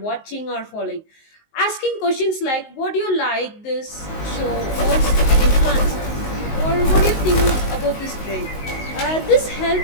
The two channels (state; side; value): late; right; 19 ms